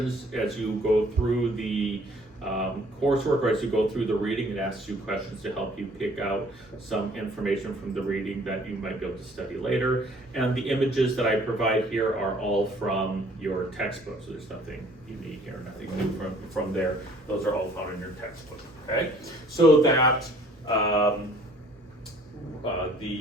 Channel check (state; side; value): normal; both; correlation 0.56